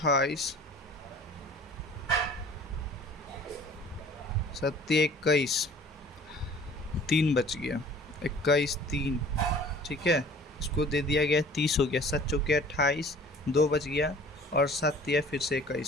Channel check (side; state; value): both; normal; correlation 0.48